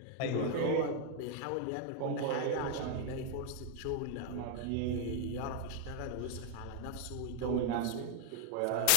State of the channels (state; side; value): different; both; correlation 0.00